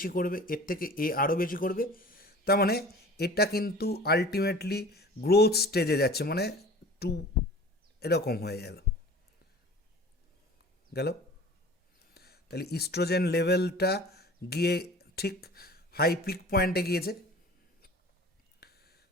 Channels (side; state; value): both; normal; correlation 0.43